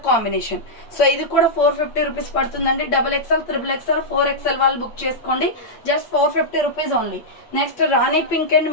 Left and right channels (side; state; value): right; late; 8.7 ms